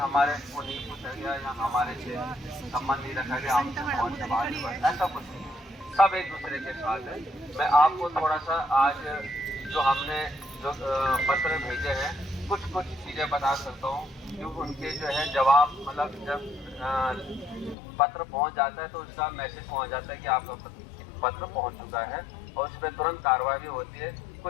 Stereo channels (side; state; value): right; drops out; at 17.8 s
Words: को नहीं पूछा गया या हमारे से संबंध नहीं रखा गया, हमसे ऐसा कुछ नहीं, सब एक दूसरे के साथ है। मैं आपको थोड़ा सा आज जो हमने जो पत्र भेजे हैं कुछ चीज़ें बता सकता हूँ, जो उनके जो है जवाब, मतलब जब पत्र पहुँच जाता है तो उसका मैसेज पहुँच जाता है कि आपका पत्र पहुँच चुका है और उस पर तुरंत कार्रवाई होती है।